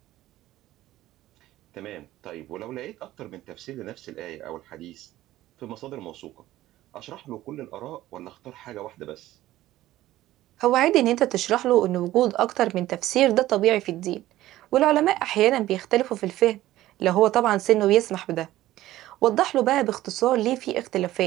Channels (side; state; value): left; quieter; 15.3 dB